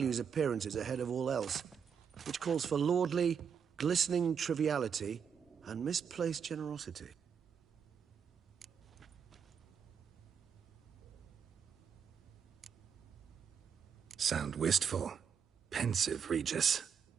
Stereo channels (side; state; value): left; quieter; 7.1 dB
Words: appearances ahead of all else. Which calls for lordly, glistening triviality and misplaced generosity. Sound wistful. Pensive, Regis.